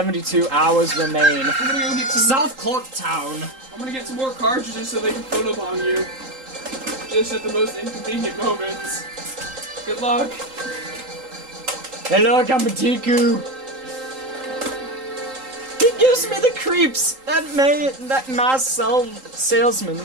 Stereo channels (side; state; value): left; late; 3.8 ms